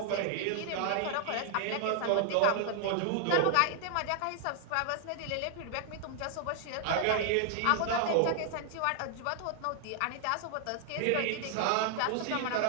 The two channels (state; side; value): different; both; correlation 0.00